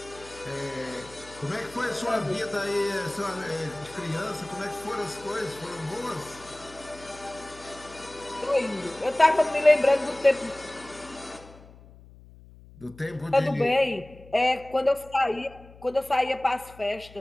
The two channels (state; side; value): noise; left; hum, 21 dB below the sound